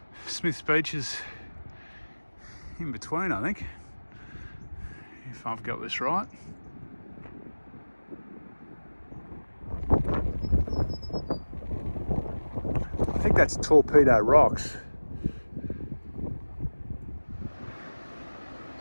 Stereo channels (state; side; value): inverted; both; correlation -1.00